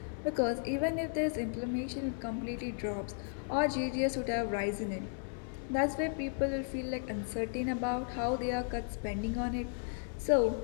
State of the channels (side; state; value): right; silent; 55 dB below the other